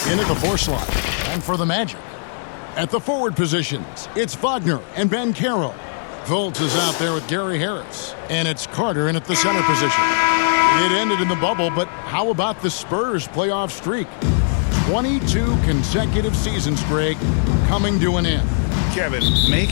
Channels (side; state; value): right; silent; 66 dB below the other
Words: in at the 4 slot. And for the Magic, at the forward positions, it's Wagner and Banchero. Fultz is out there with Gary Harris. And it's Carter in at the center position. It ended in the bubble, but how about the Spurs playoff streak? 22 consecutive seasons, Greg, coming to an end. Kevin,